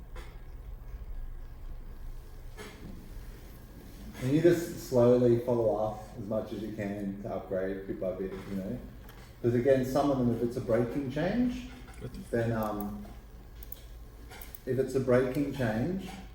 And you just slowly follow up as much as you can to upgrade bit by bit, you know. Because again, some of them, if it's a breaking change, then if it's a breaking change,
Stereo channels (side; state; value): both; identical; correlation 1.00